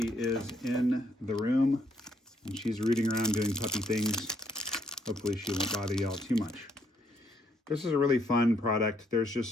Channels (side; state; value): both; normal; correlation 0.72